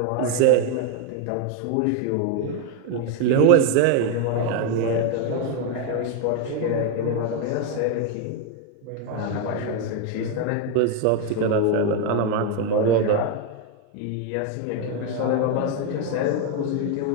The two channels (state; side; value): different; both; correlation 0.01